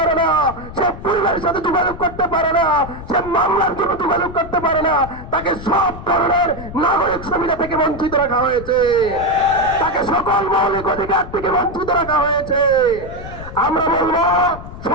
না, সে পরিবারের সাথে যোগাযোগ করতে পারে না, সে মামলার জন্য যোগাযোগ করতে পারে না, তাকে সব ধরনের নাগরিক সুবিধা থেকে বঞ্চিত রাখা হয়েছে, তাকে সকল মৌলিক অধিকার থেকে বঞ্চিত রাখা হয়েছে। আমরা বলবো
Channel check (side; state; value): left; noise; rumble, 12 dB below the sound